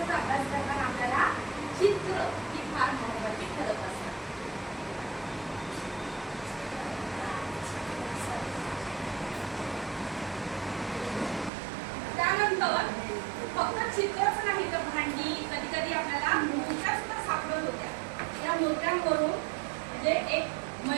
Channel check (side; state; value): left; drops out; at 11.5 s